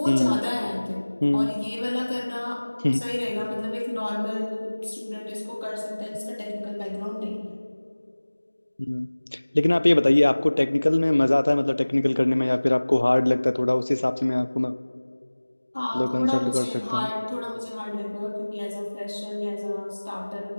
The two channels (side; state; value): both; inverted; correlation -1.00